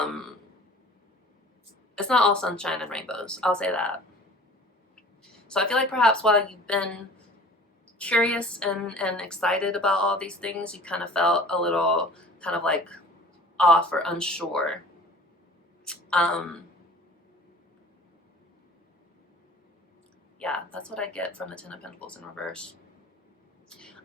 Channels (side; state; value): both; normal; correlation 0.45